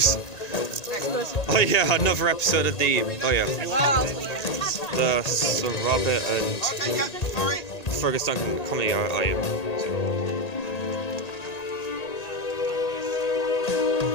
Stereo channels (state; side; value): late; right; 1.8 ms